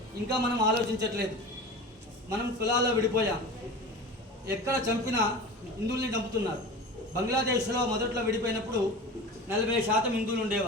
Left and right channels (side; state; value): both; normal; correlation 0.33